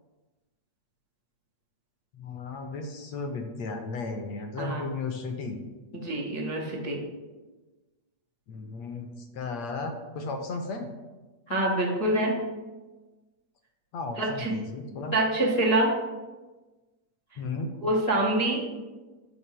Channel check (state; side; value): late; right; 8.5 ms